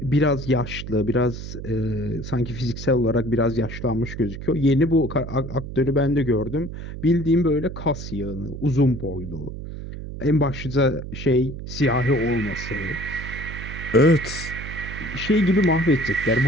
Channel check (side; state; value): right; noise; hum, 9 dB below the sound